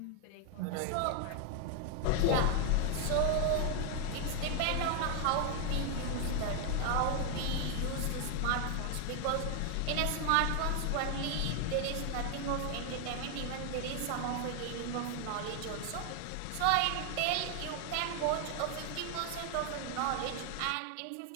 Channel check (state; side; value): different; both; correlation 0.00